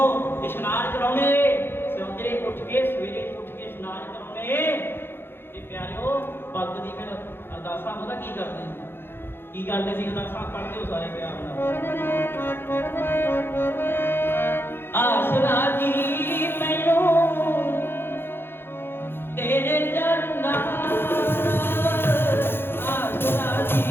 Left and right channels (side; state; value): right; late; 0.11 ms